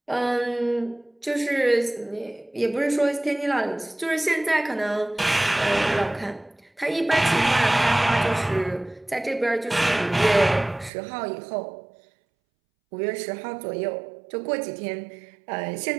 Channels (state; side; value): drops out; left; at 10.9 s